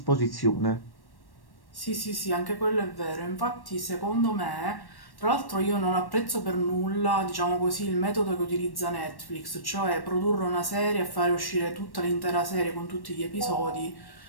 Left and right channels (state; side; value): late; right; 1.1 ms